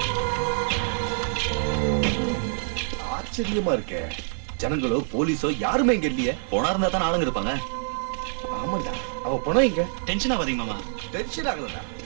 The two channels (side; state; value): left; silent; 56 dB below the other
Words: ஆச்சரியமா இருக்கே. ஜனங்களோ போலீஸோ யாருமே இங்க இல்லையே. போனா இருந்தா தான் ஆளுங்க இருப்பாங்க. ஆமாடா, அவ போனா இங்க. டென்ஷன் ஆகாதீங்க மாமா. டென்ஷன் ஆகலடா,